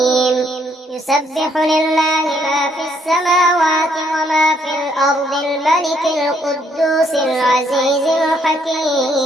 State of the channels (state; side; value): normal; both; correlation 0.69